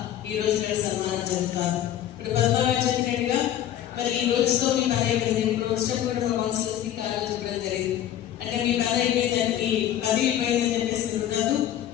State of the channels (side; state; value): right; quieter; 11.5 dB